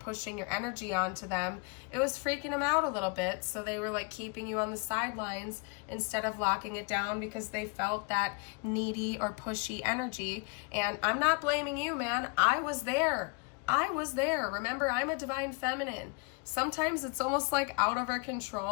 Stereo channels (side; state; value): right; quieter; 32.7 dB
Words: your energy onto them, it was freaking them out a little bit. So they were like keeping you on the sidelines instead of locking it down, because they felt that needy or pushy energy. And I'm not blaming you, man. I was there. Remember, I'm a divine feminine. Sometimes it's almost like out of our